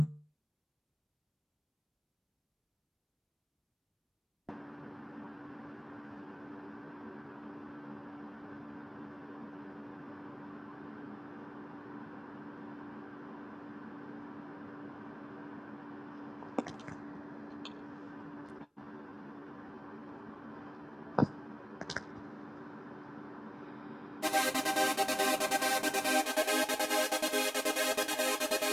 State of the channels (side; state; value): both; identical; correlation 1.00